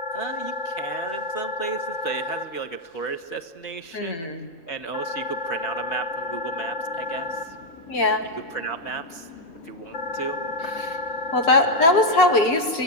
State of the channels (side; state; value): right; late; 6.1 ms